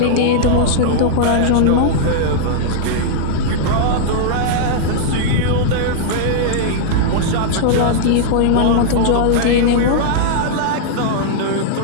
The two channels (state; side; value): different; both; correlation -0.02